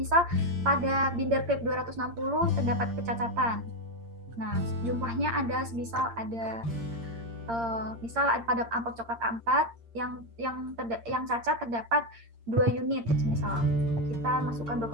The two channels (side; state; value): left; late; 8.7 ms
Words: pada binder clip 260 terdapat kecacatan. Nah, jumlahnya ada misal pada amplop coklat A4 yang cacat terdapat 2 unit. Misal kita masukkan